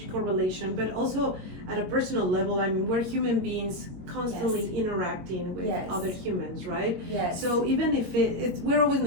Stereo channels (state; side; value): late; left; 22 ms